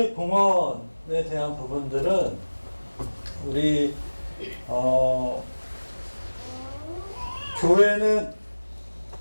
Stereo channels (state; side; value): inverted; both; correlation -1.00